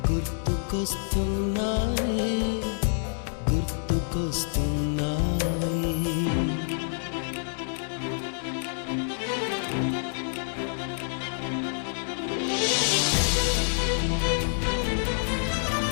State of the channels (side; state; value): right; silent; 60 dB below the other